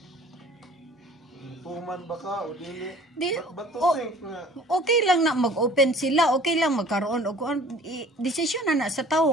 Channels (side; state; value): both; normal; correlation 0.49